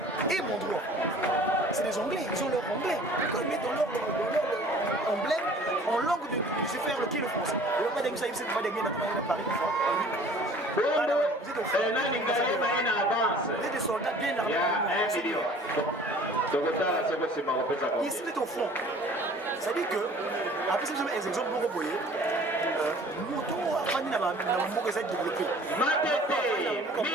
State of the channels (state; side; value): normal; both; correlation 0.49